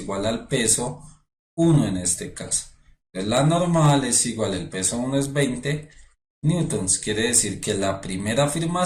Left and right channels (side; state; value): both; identical; correlation 1.00